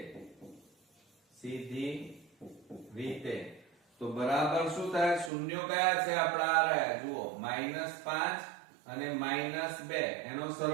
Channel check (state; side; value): drops out; left; at 5.3 s